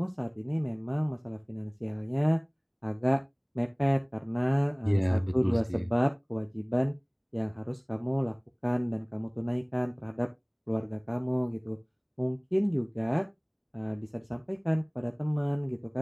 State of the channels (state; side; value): identical; both; correlation 1.00